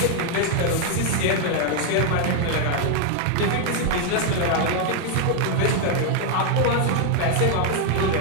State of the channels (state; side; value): different; both; correlation 0.01